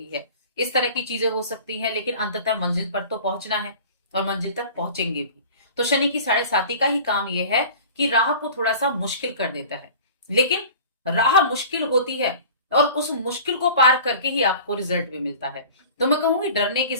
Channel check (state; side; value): inverted; both; correlation -0.42